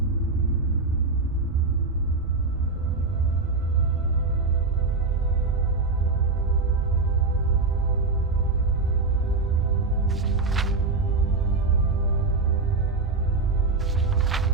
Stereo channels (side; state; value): left; quieter; 3.8 dB